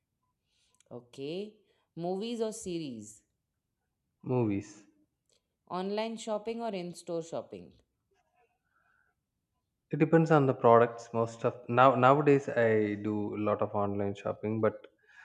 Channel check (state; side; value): identical; both; correlation 1.00